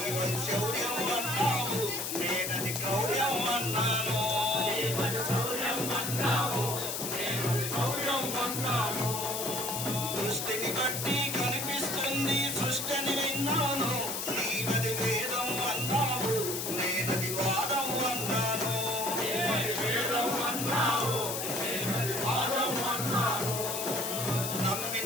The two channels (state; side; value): noise; left; hiss, 3 dB below the sound